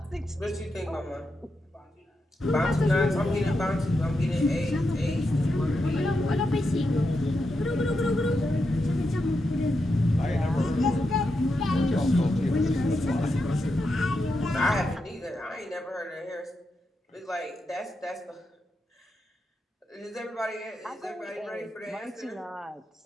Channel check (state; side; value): normal; both; correlation 0.86